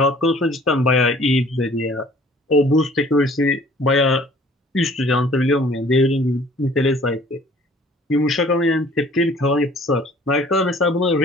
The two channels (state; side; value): normal; both; correlation 0.53